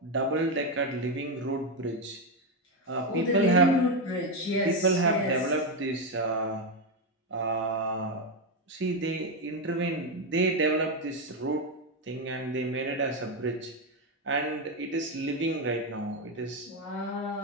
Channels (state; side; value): normal; both; correlation 0.08